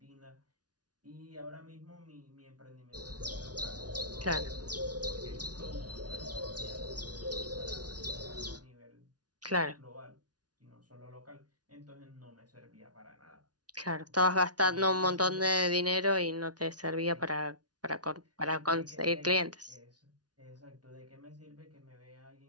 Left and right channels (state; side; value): late; left; 0.69 ms